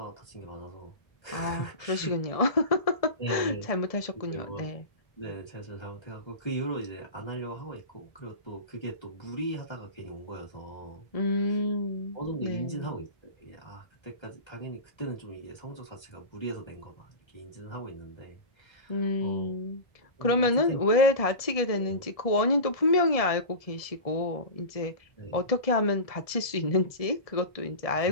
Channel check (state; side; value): late; right; 1.7 ms